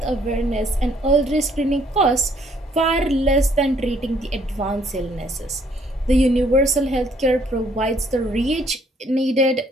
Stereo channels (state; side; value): normal; both; correlation 0.65